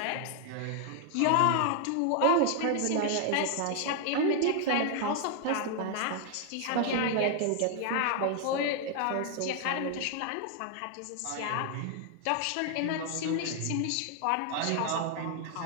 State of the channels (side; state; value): both; different; correlation 0.00